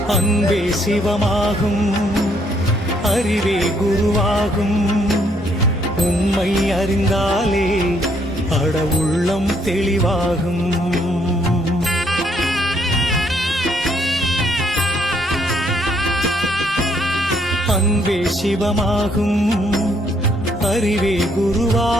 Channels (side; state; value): both; normal; correlation 0.70